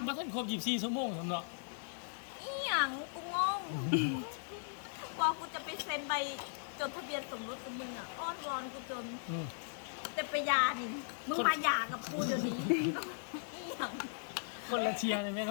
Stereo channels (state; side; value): silent; right; digital silence